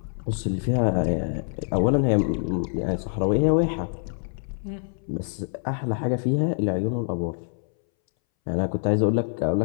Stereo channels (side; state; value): right; silent; 62 dB below the other